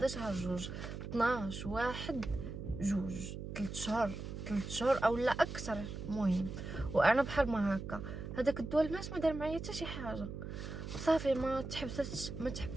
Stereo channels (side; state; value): right; noise; hum, 7 dB below the sound